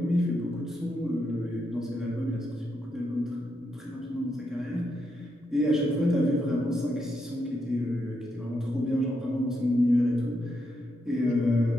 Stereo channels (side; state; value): both; normal; correlation 0.82